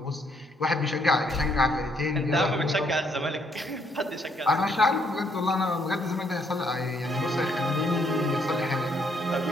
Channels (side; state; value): both; normal; correlation 0.71